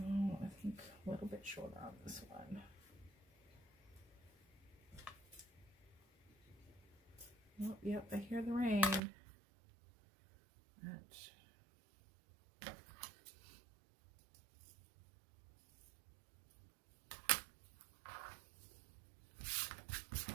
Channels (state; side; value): drops out; left; at 9.0 s